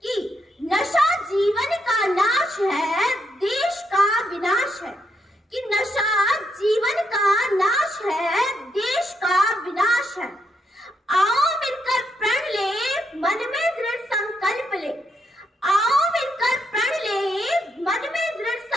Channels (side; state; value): both; normal; correlation 0.78